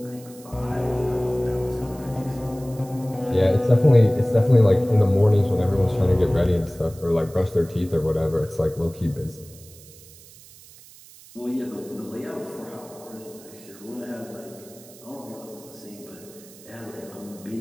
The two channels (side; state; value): right; noise; hiss, 21 dB below the sound